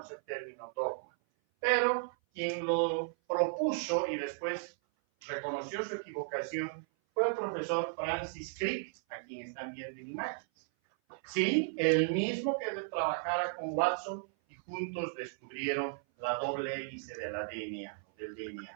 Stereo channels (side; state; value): left; silent; 54 dB below the other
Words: el término dogma, pero quien lo propuso y después reconoció su equivocación fue el profesor Francis Crick, a quien están viendo en imágenes. Sí, el mismo que trabajara con Watson y juntos descubrieron la doble hélice del